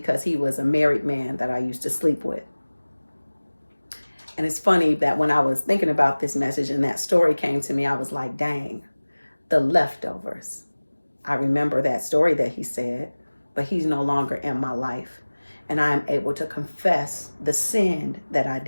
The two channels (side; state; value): both; inverted; correlation -1.00